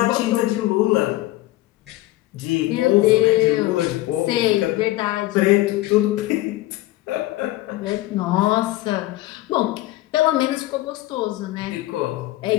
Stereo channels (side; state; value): right; quieter; 17.3 dB